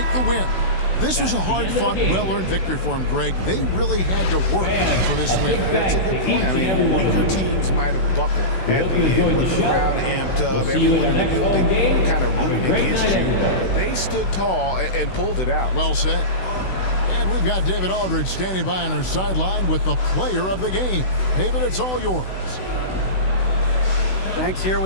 the win. This was a hard-fought, well-earned victory for them, Greg. They really had to work for this win. That's a good point. I mean, weaker teams might have buckled at the end with the crowd amped up, everyone in the building kind of rooting against you. But they stood tall and pulled it out. Well said. And we've got David Aldridge standing by on our sideline with the player of the game. David, it's all yours. Thanks. Here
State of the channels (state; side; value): late; right; 16 ms